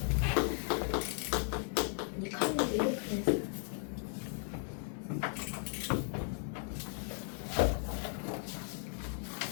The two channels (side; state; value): right; silent; 54 dB below the other